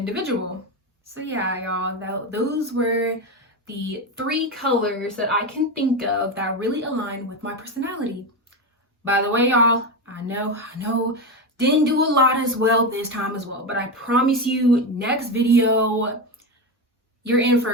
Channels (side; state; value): both; normal; correlation 0.16